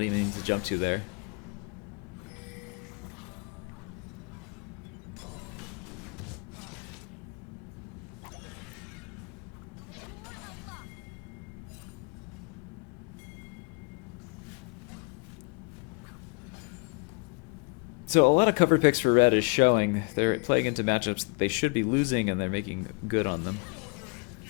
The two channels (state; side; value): quieter; right; 34.0 dB